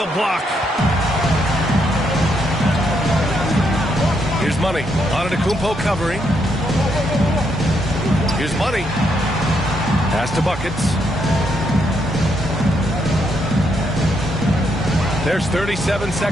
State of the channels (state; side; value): normal; both; correlation 0.77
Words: block. Here's Money. Antetokounmpo covering. Here's Money. Pass to Buckets. There's 37